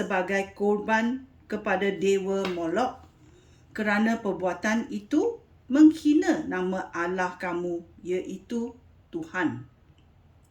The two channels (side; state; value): both; identical; correlation 1.00